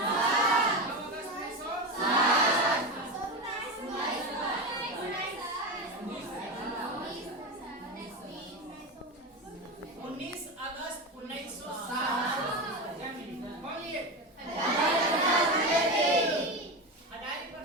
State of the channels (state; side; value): normal; both; correlation 0.20